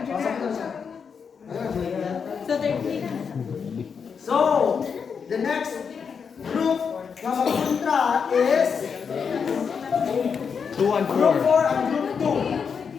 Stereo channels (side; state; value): right; quieter; 6.3 dB